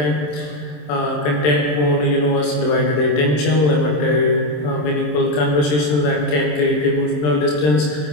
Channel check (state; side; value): late; right; 27 ms